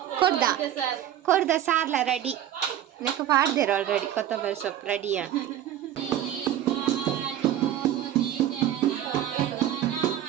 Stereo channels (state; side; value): quieter; left; 11.5 dB